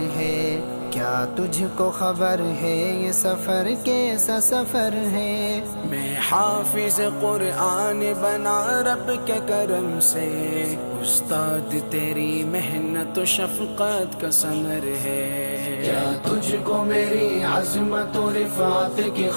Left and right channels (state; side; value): inverted; both; correlation -1.00